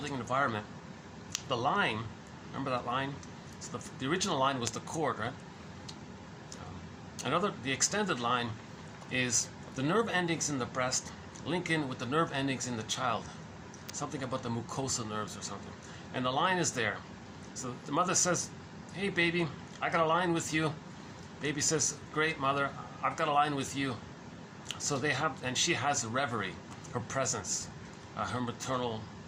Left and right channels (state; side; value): identical; both; correlation 1.00